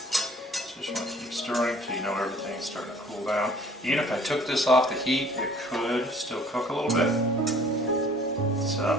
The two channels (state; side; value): normal; both; correlation 0.54